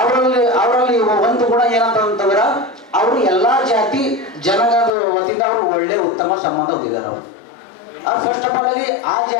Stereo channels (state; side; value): drops out; right; at 4.9 s